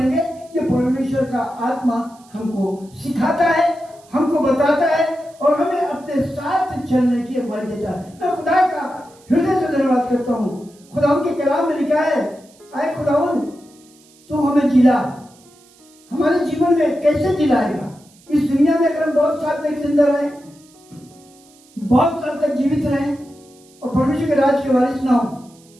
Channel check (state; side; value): noise; right; hiss, 28 dB below the sound